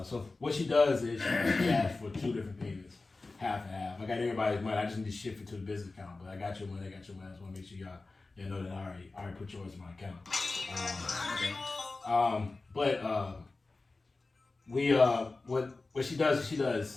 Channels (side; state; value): right; quieter; 3.5 dB